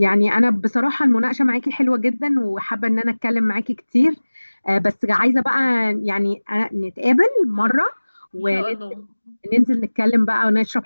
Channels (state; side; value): inverted; both; correlation -1.00